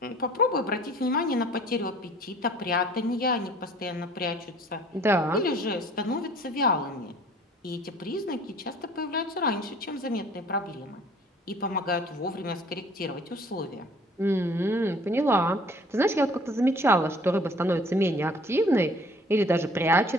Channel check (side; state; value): both; normal; correlation 0.53